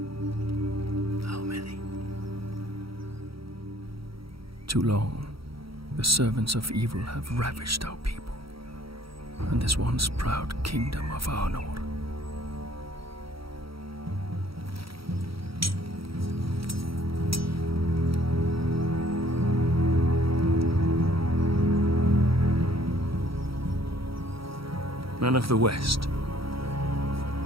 How many? Too long, the servants of evil have ravished our people, and this once proud kingdom of Arnor. Men of the West,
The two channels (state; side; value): late; left; 0.75 ms